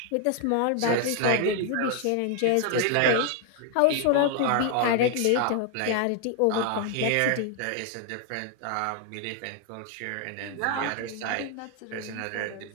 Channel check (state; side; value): different; both; correlation 0.00